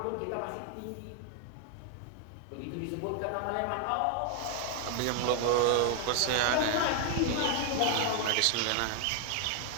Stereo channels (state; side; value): different; both; correlation 0.00